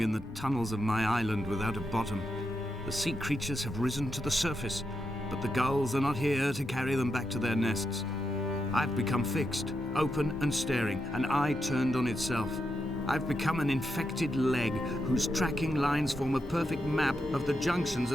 in the tunnels of my island without a bottom. The sea creatures have risen to the surface, but the gulls are not here to carry them back to their nests. I've become fixed, open and staring, an eye turned on itself. I've become an infected leg whose tracking lines form a perfect map of the junctions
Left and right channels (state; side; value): normal; both; correlation 0.85